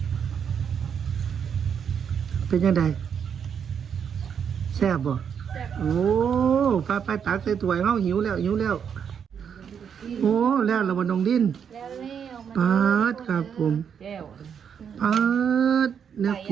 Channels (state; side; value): quieter; left; 7.6 dB